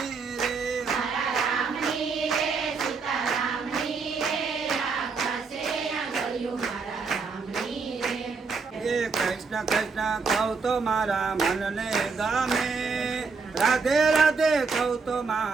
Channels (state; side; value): quieter; left; 4.8 dB